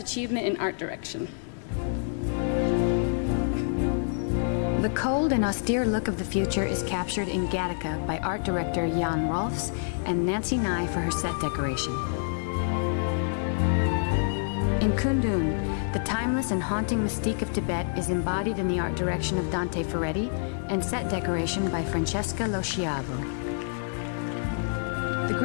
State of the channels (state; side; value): silent; right; digital silence